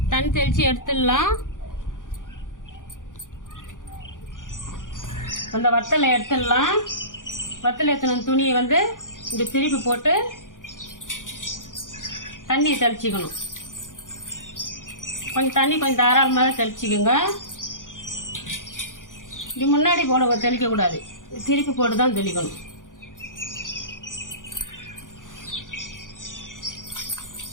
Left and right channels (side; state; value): right; late; 0.88 ms